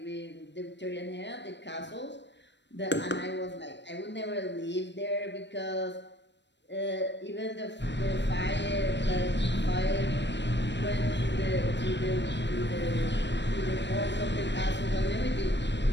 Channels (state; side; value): late; right; 0.52 ms